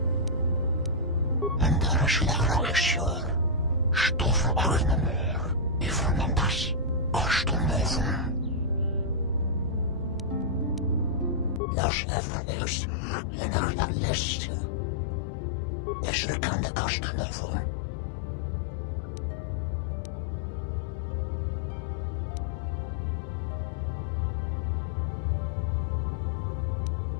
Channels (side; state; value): right; drops out; at 11.6 s